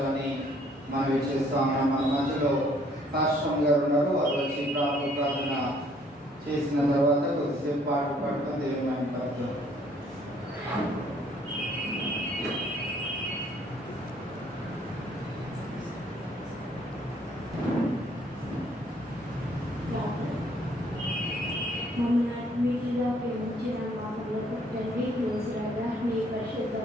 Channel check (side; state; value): both; normal; correlation 0.62